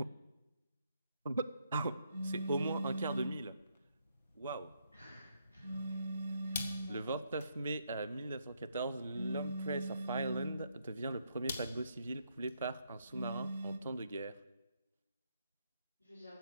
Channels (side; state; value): both; inverted; correlation -0.76